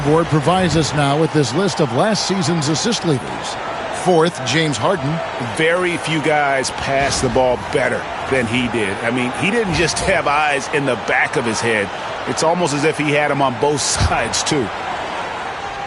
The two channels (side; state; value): both; identical; correlation 1.00